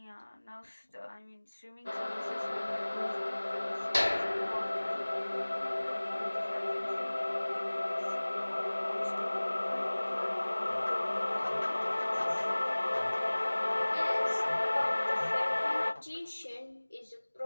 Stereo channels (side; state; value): both; inverted; correlation -1.00